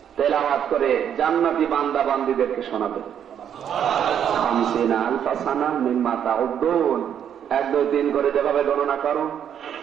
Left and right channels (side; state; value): left; quieter; 9.0 dB